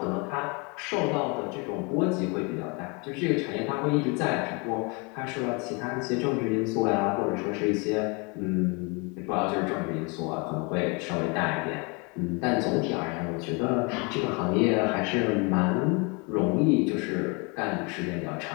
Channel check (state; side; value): quieter; right; 30.3 dB